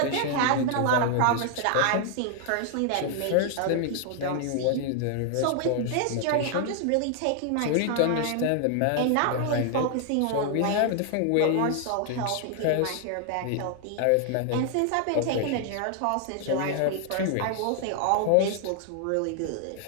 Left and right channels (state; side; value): different; both; correlation 0.00